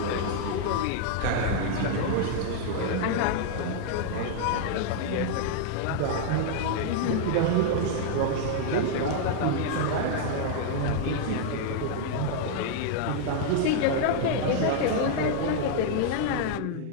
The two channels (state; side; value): different; both; correlation -0.01